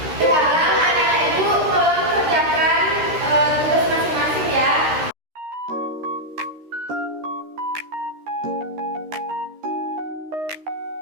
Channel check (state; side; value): late; left; 13 ms